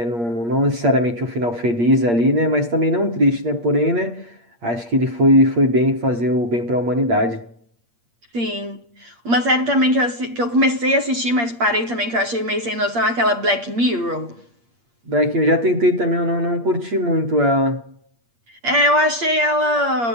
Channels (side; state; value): left; late; 8.5 ms